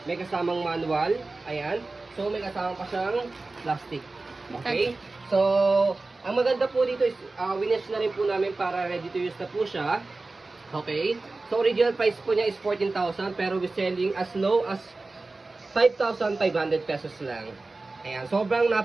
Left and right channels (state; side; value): quieter; left; 3.4 dB